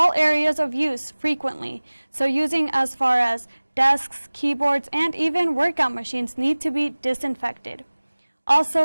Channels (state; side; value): inverted; both; correlation -1.00